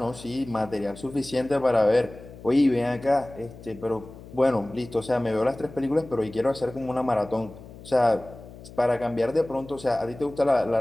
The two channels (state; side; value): noise; left; hum, 17 dB below the sound